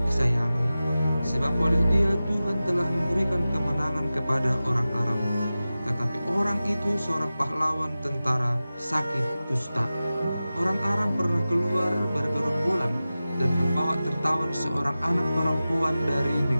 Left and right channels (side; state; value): both; inverted; correlation -0.95